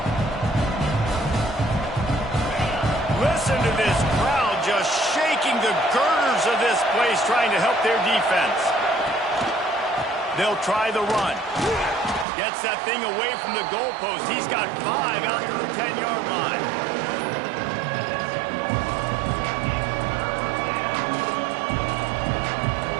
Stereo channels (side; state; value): left; drops out; at 12.2 s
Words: Listen to this crowd just shaking the girders of this place, trying to help their defense. They'll try the run. Gets that thing away from the goalpost. He's got 5 out to the 10-yard line.